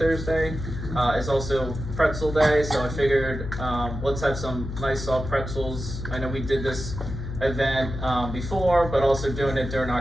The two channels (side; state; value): left; noise; hum, 7 dB below the sound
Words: It's also Pretzel Day, so I figured let's have some nice soft pretzels. I know we did this event before, but also doing it during